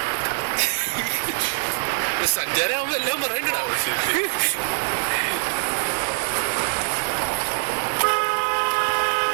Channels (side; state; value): left; silent; 63 dB below the other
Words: സഞ്ചാരമാകുമ്പോ എല്ലാം പറയണ്ടാവും.